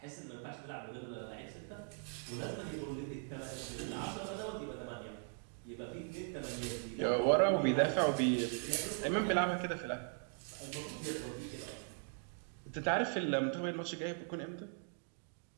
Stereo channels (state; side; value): silent; left; 51 dB below the other